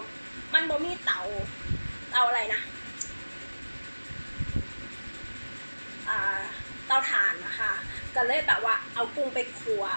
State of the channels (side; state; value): both; inverted; correlation -1.00